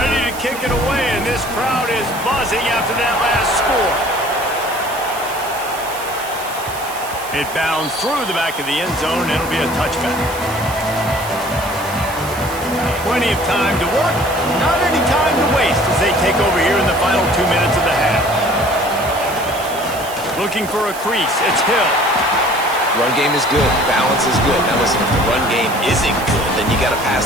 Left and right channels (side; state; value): right; noise; hiss, 13 dB below the sound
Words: to kick it away, and this crowd is buzzing after that last score. It bounds through the back of the end zone, and it'll be a touchback. Plenty of time to work, not any time to waste as they take over here in the final 2 minutes of the half. Looking for a crease, it's Hill. Run game is good, balance is good. Now listen, if the run game isn't good, then you got to pass